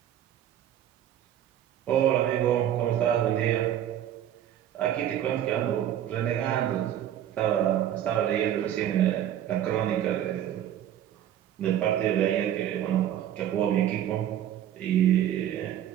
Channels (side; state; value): left; quieter; 11.1 dB